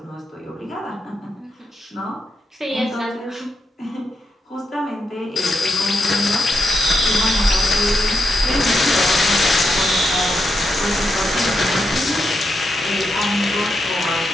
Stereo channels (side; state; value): both; normal; correlation 0.82